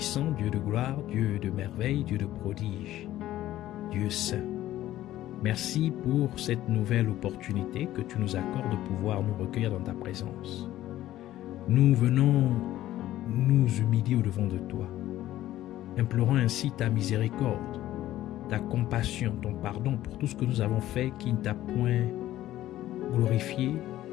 Dieu de gloire, Dieu de merveille, Dieu de prodige, Dieu saint. Merci pour cette nouvelle opportunité que tu nous accordes de pouvoir nous recueillir dans ta présence. Nous venons nous humilier au-devant de toi, implorant ainsi ta miséricorde, ta compassion, ton pardon pour tout ce que nous avons fait qui ne t'a point glorifié,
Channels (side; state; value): right; quieter; 14.1 dB